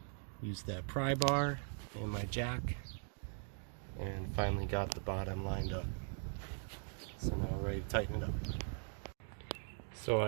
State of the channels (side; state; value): left; silent; 51 dB below the other